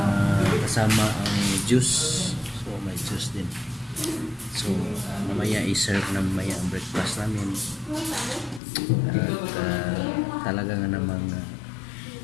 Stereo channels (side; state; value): right; drops out; at 8.6 s